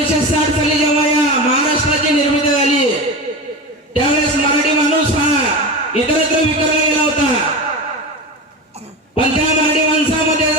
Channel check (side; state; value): both; normal; correlation 0.25